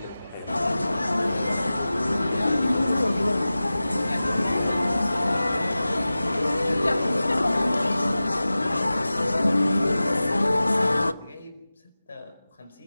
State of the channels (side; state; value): both; inverted; correlation -0.96